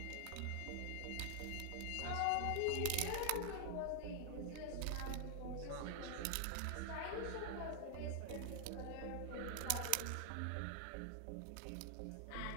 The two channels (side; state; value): both; different; correlation 0.00